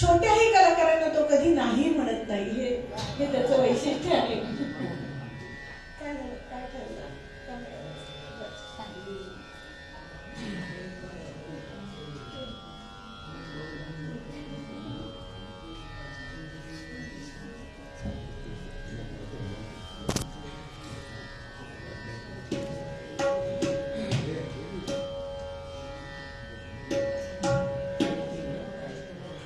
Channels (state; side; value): identical; both; correlation 1.00